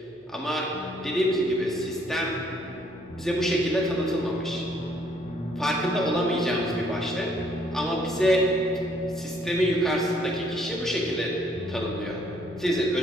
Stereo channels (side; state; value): both; normal; correlation 0.65